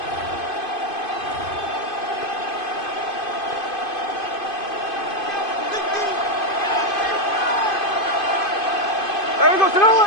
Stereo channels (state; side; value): late; right; 2.5 ms